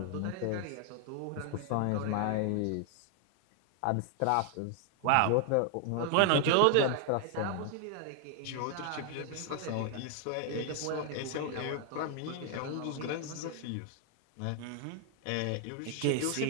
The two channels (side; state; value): both; different; correlation 0.00